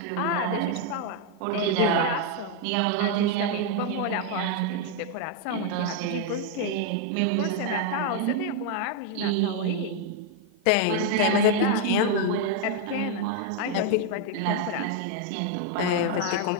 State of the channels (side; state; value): both; different; correlation 0.00